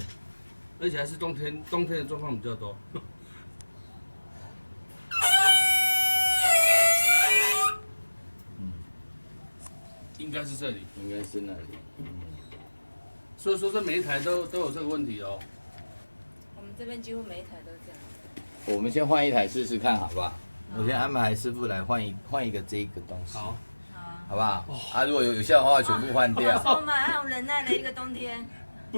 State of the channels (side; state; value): both; inverted; correlation -1.00